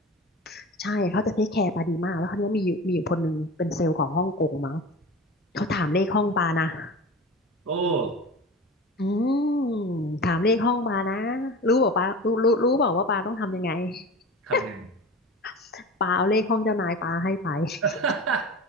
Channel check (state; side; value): normal; both; correlation 0.33